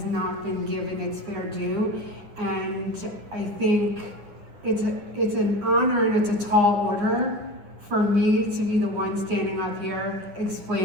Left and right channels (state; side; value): late; left; 9.8 ms